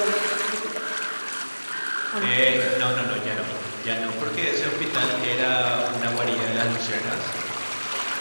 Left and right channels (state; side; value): inverted; both; correlation -1.00